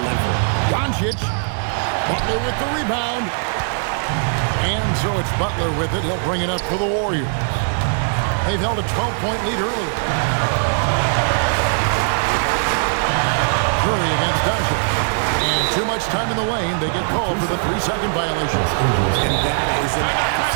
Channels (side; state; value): left; silent; 61 dB below the other